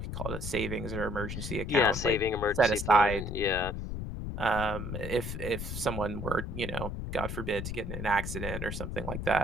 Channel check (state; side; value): noise; left; rumble, 5 dB below the sound